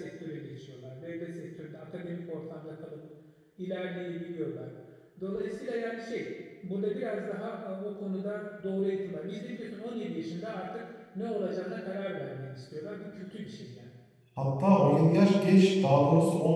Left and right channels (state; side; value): identical; both; correlation 1.00